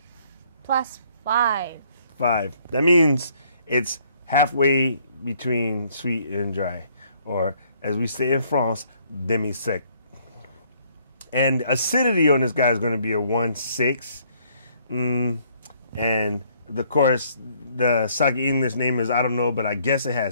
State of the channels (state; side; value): inverted; both; correlation -0.65